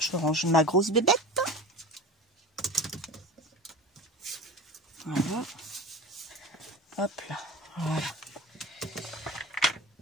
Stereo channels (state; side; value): normal; both; correlation 0.32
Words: range ma grosse bébête. Voilà. Hop là. Voilà.